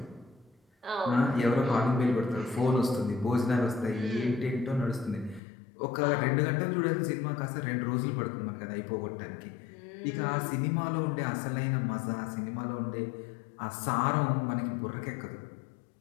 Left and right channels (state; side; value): drops out; right; at 5.4 s